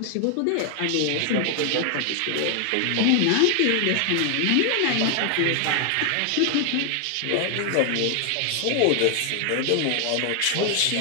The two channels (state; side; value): different; both; correlation 0.00